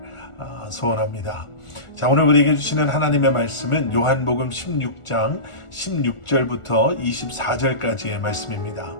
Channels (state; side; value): late; right; 1.4 ms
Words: 소원합니다. 자, 오늘 우리에게 주시는 하나님의 말씀은 요한복음 16장 16절부터 24절까지의 말씀입니다.